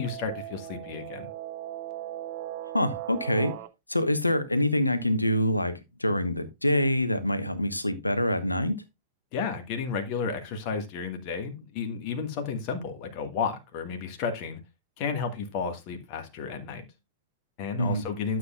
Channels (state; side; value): inverted; both; correlation -0.66